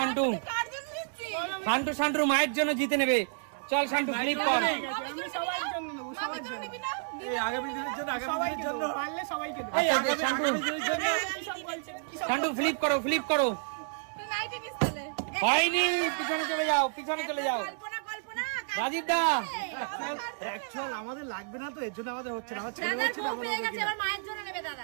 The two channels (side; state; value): left; silent; digital silence